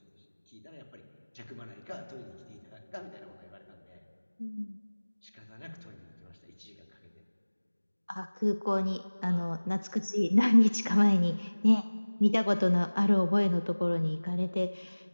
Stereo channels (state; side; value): inverted; both; correlation -1.00